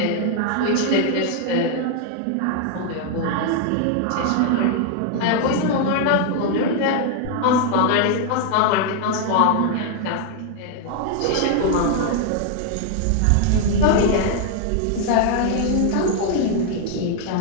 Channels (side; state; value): both; different; correlation 0.00